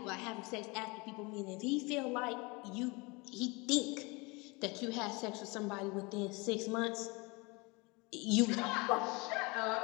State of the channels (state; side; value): quieter; right; 27.0 dB